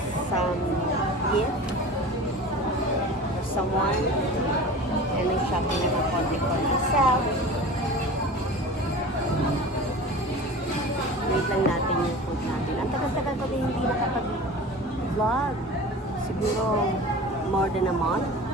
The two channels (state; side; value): normal; both; correlation 0.36